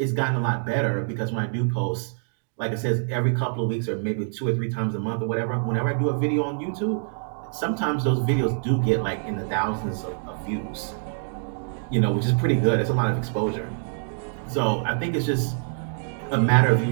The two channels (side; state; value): left; silent; digital silence